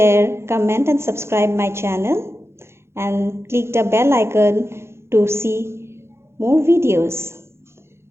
comment and subscribe my channel, and click the bell icon to see more videos.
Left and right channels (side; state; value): left; late; 0.13 ms